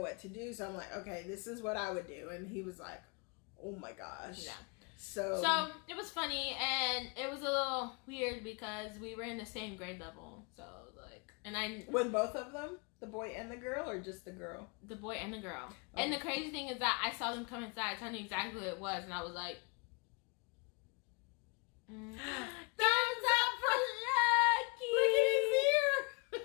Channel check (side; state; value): right; quieter; 32.4 dB